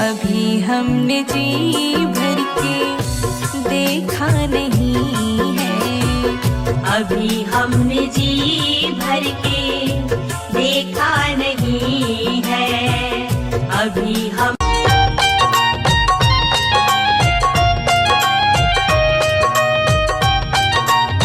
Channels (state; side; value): identical; both; correlation 1.00